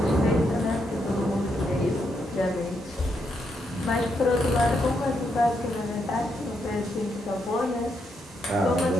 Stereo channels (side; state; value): both; normal; correlation 0.79